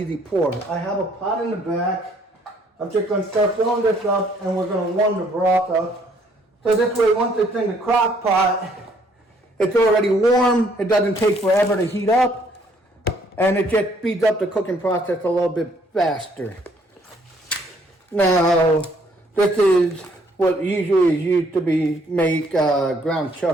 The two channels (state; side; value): normal; both; correlation 0.65